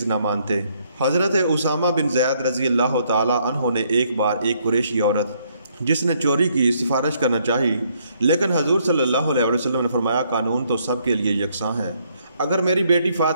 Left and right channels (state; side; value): inverted; both; correlation -0.70